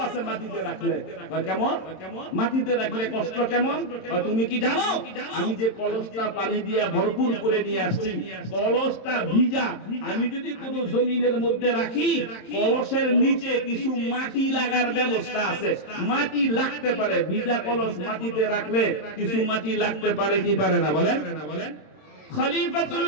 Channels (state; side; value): late; right; 27 ms